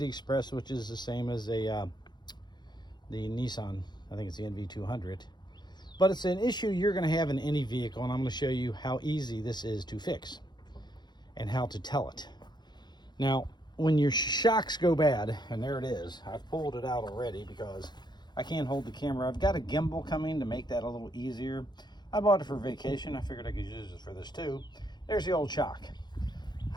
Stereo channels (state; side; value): late; right; 0.21 ms